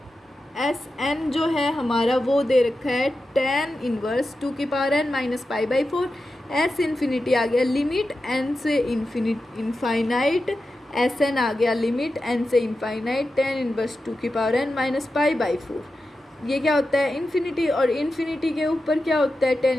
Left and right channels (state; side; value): normal; both; correlation 0.91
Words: SN जो है हमारा वो दे रखा है tan इनवर्स 2 की power n minus π/4। S infinity आ गया लिमिट n से इनफाइनाइट, SN आ गया लिमिट n से इनफाइनाइट tan इनवर्स 2 की पावर n माइनस π/4। ये क्या होता है, इन्फिनिटी, और इन्फिनिटी के ऊपर क्या होता है, tan